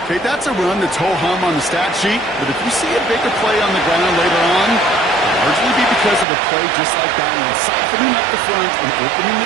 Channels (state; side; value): drops out; left; at 6.2 s